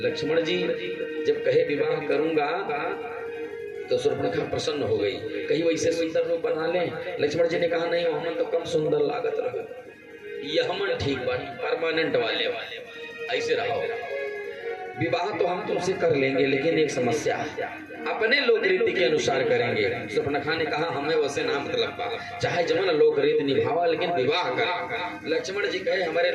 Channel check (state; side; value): identical; both; correlation 1.00